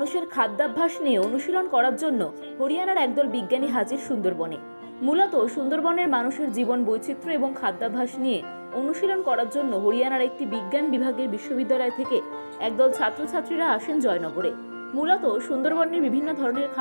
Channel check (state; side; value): inverted; both; correlation -1.00